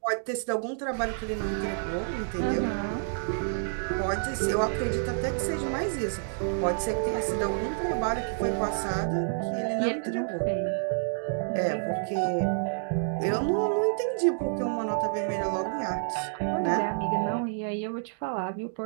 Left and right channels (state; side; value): silent; left; digital silence